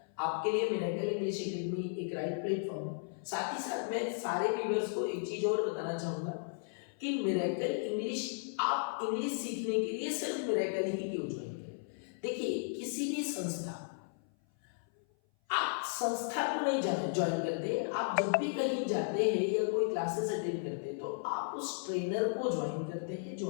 आपके लिए मिरेकल इंग्लिश एकेडमी एक राइट प्लेटफॉर्म है। साथ ही साथ मैं सारे व्यूअर्स को एक चीज और बताना चाहूंगा कि मिरेकल इंग्लिश, आप इंग्लिश सीखने के लिए सिर्फ मिरेकल ही क्यों ज्वाइन करें? देखिए किसी भी संस्था, आप संस्था को नहीं ज्वाइन करते, आप जब भी कहीं जाते हैं या कोई क्लासेस अटेंड करते हैं तो आप उस ट्रेनर को ज्वाइन करते हैं जो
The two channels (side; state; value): right; silent; 54 dB below the other